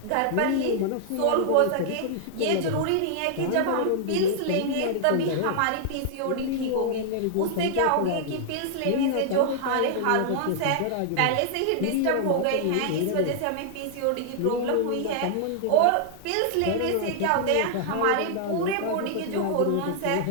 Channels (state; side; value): different; both; correlation -0.01